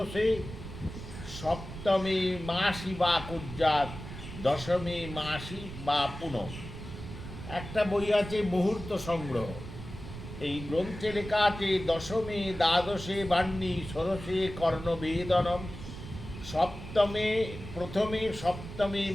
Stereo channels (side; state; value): right; noise; rumble, 11 dB below the sound